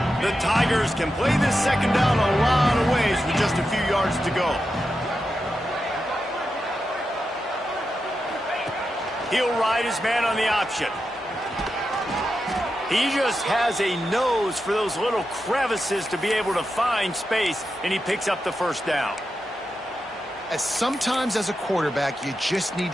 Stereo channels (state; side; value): normal; both; correlation 0.89